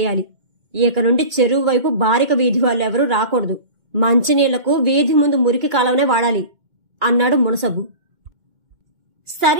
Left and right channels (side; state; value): left; late; 2.1 ms